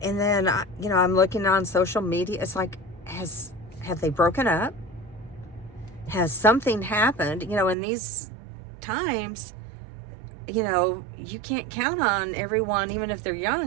And then, I'm looking on social media. It's like, have they broken up? Has something happened? In these times, you can't count on everyone, even if they're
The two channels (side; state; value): left; drops out; at 7.8 s